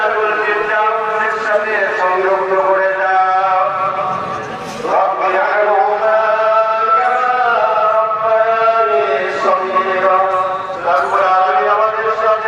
ফিরদাউসের সাথে সংযুক্ত করে দাও। রব্বিল আরহামহুমা কামা রাব্বায়ানি সগীরা। রব্বুল আলামিন, আমাদের সাথে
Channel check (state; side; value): identical; both; correlation 1.00